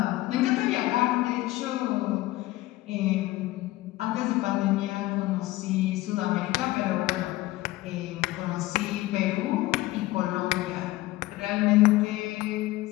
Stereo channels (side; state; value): right; quieter; 17.8 dB